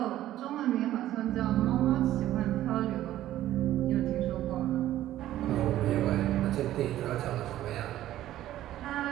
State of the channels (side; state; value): left; quieter; 13.6 dB